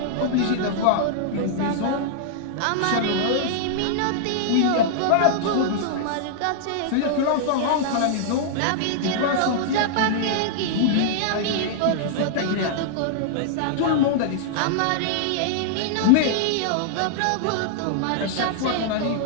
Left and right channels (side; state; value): both; different; correlation -0.01